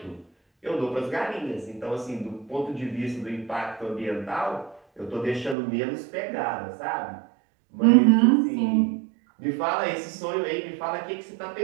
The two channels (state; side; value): drops out; left; at 5.6 s